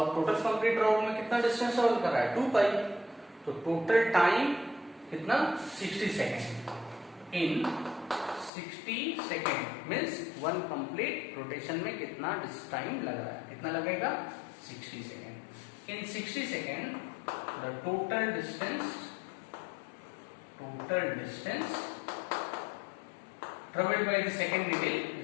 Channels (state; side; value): drops out; right; at 8.5 s